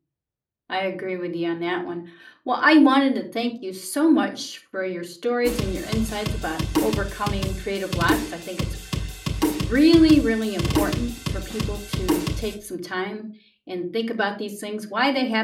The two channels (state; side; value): identical; both; correlation 1.00